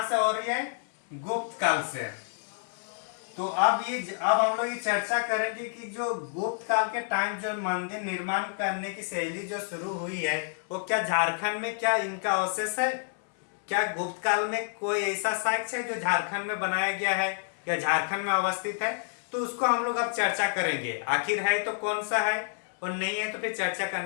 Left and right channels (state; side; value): silent; right; 59 dB below the other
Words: से हो रही है? गुप्त काल से। तो अब हम लोग ये चर्चा करेंगे कि जो गुप्त काल के टाइम जो मंदिर निर्माण करने की शैली जो शुरू हुई है, वो क्या झारखंड में क्या इनका अवशेष है? क्या गुप्त काल में कोई ऐसा साक्ष्य है जो झारखंड में बनाया गया है या झारखंड में अवस्थित है? तो उसको हम लोग अब चर्चा करेंगे। आखिर है तो कौन सा है, और नहीं है तो फिर चर्चा